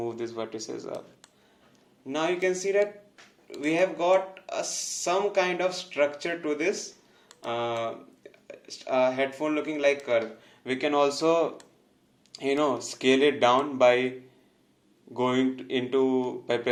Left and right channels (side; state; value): both; identical; correlation 1.00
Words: these vertices up. Now you can see that we have got some kind of structure to this headphone looking like curve. We can also scale it down by by